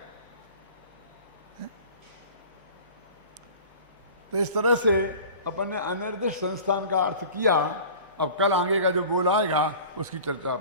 तो इस तरह से अपन ने अनिर्दिष्ट संस्थान का अर्थ किया। अब कल आगे का जो बोल आएगा उसकी चर्चा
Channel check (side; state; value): both; inverted; correlation -0.41